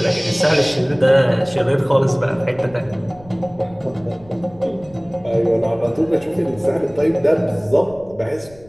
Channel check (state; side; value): noise; left; rumble, 24 dB below the sound